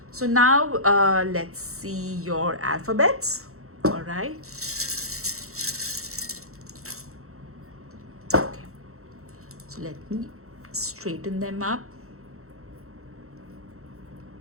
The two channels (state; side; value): late; left; 0.63 ms